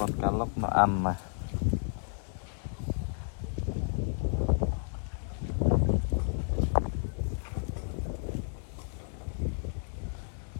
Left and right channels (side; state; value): right; silent; 56 dB below the other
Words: cá lóc nó ăn mà.